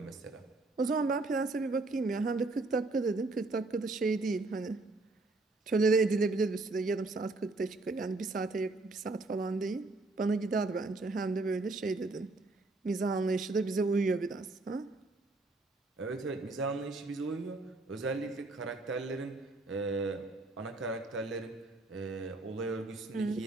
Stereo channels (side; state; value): left; quieter; 3.3 dB